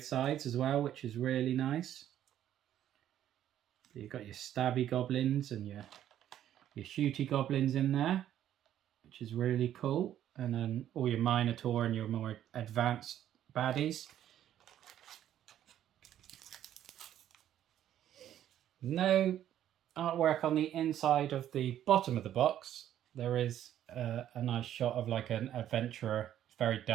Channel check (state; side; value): quieter; left; 11.3 dB